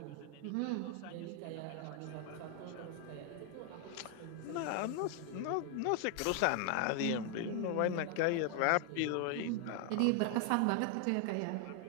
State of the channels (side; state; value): both; different; correlation 0.00